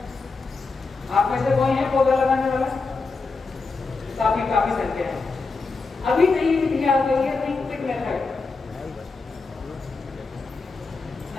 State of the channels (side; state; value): right; quieter; 4.1 dB